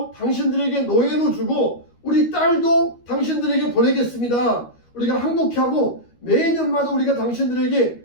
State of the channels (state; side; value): late; right; 13 ms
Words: 당신들에게 노예로 주고 우리 딸도 당신들에게 보내겠습니다. 우리가 항복하고 매년마다 우리가